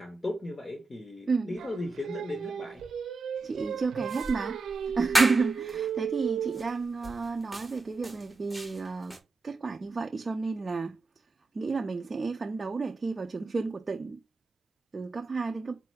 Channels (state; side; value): quieter; left; 3.7 dB